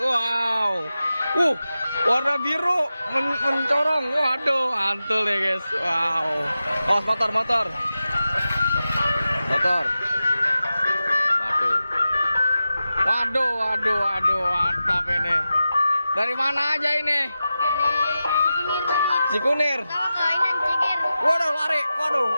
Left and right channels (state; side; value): inverted; both; correlation -0.92